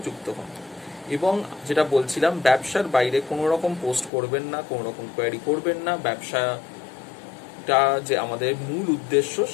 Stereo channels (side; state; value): right; drops out; at 4.1 s